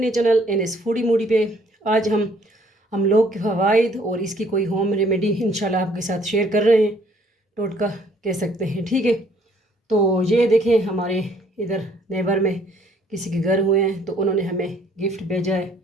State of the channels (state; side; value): normal; both; correlation 0.62